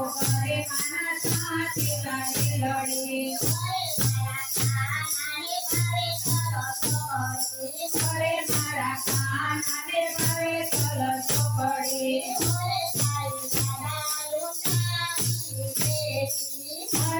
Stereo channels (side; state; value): both; identical; correlation 1.00